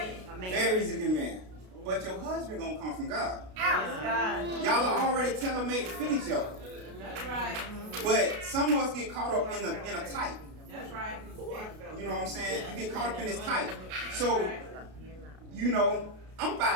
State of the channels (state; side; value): late; left; 32 ms